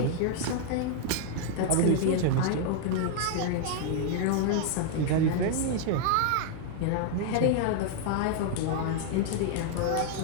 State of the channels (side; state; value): both; different; correlation 0.00